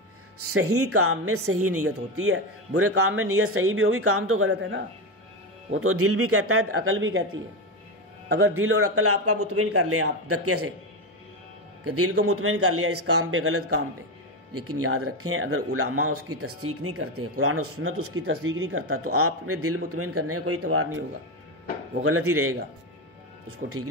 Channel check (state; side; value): normal; both; correlation 0.14